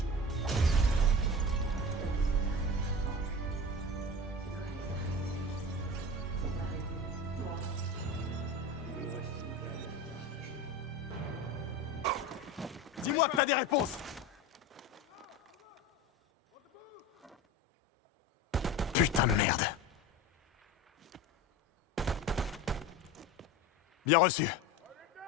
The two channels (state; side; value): normal; both; correlation 0.30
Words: Dis-moi que t'as des réponses. Putain de merde. Bien reçu.